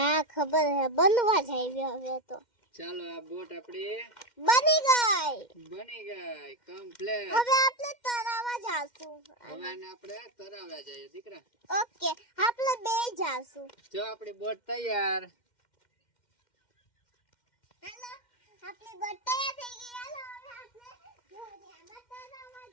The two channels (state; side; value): late; right; 2.1 ms